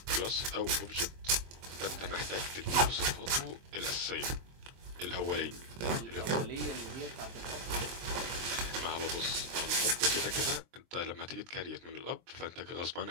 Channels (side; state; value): left; late; 23 ms